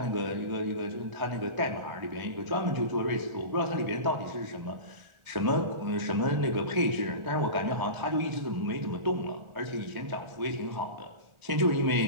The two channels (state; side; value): late; left; 1.4 ms